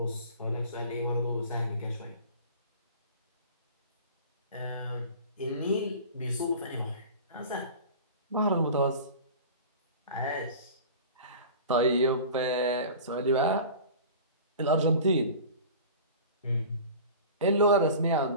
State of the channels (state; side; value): inverted; both; correlation -0.39